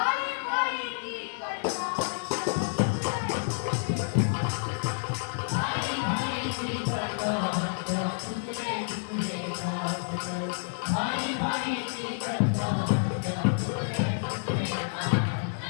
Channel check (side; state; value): right; silent; digital silence